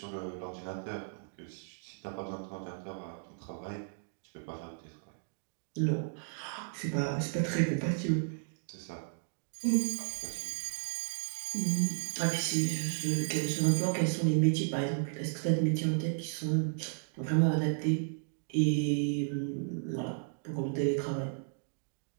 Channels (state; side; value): silent; left; digital silence